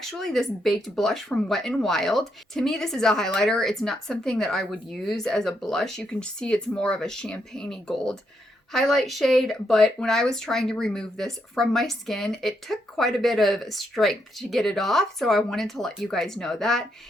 this Baked Blush from Wet n Wild. To me, this is a highlighter. It's not something that I would use as a blush. You can see it's more of a champagne-y gold highlight shade, but when I was trying to remove this from my skin, it took quite a bit of strength to get it off, so I wanted to let you guys know that.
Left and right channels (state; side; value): normal; both; correlation 0.79